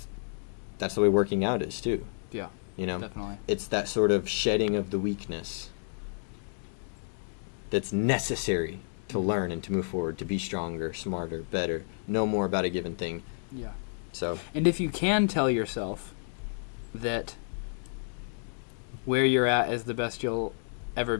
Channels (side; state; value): right; silent; digital silence